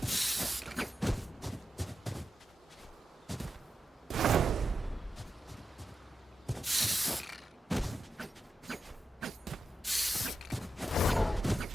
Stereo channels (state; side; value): normal; both; correlation 0.89